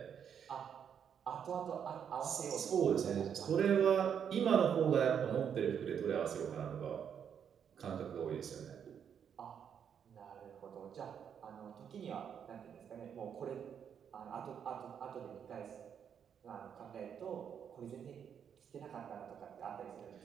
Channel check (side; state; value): left; quieter; 8.0 dB